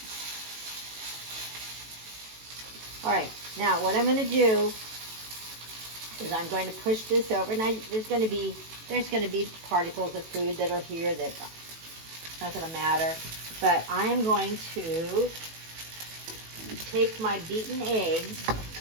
All right, now what I'm going to do is I'm going to push this over. Now there's going to be particles of food that are here that's not going to matter. But I am going to take my beaten eggs,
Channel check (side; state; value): left; late; 18 ms